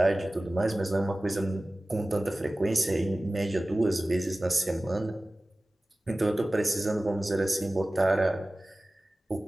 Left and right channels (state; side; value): normal; both; correlation 0.97